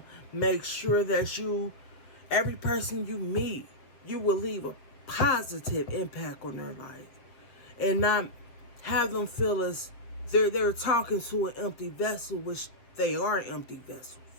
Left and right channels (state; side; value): late; right; 7.8 ms